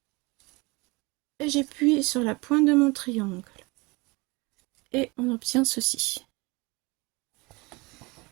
Et j'appuie sur la pointe de mon triangle. Et on obtient ceci.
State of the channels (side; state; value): left; quieter; 25.4 dB